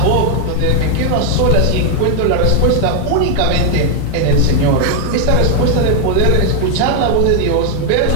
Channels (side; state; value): both; different; correlation 0.00